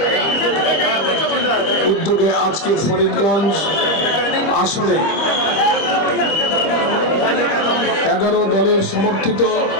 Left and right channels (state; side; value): late; right; 25 ms